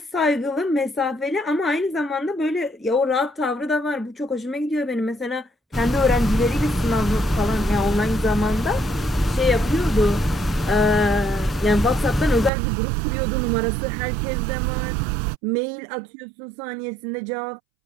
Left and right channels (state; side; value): drops out; left; at 12.5 s